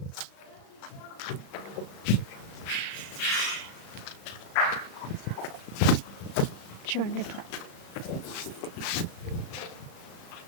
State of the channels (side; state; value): right; late; 35 ms